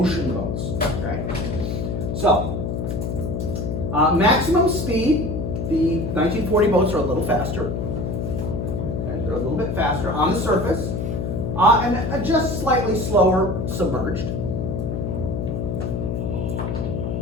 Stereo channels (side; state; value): left; noise; hum, 2 dB below the sound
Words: boats. Okay. So maximum speed, the 1940 boats are a little faster. Okay, they're a little bit faster on the surface, and just slightly slower submerged.